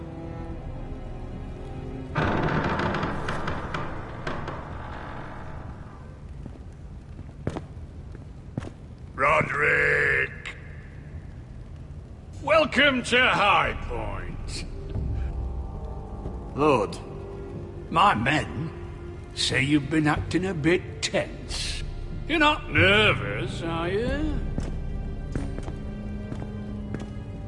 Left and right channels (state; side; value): identical; both; correlation 1.00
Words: Roderick! Welcome to High Point. Lord, my men say you've been acting a bit tense. You're not nervous, are you?